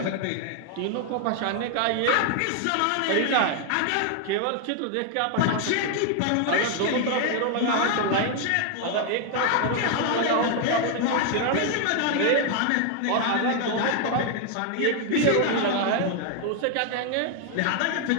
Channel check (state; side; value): different; both; correlation 0.00